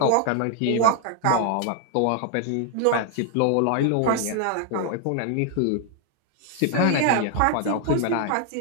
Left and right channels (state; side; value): different; both; correlation 0.00